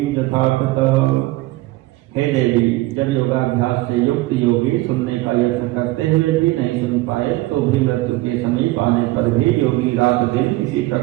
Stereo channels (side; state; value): left; quieter; 18.8 dB